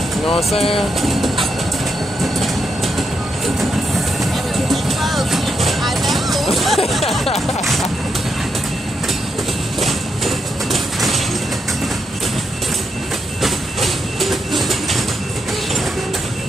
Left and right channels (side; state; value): both; normal; correlation 0.82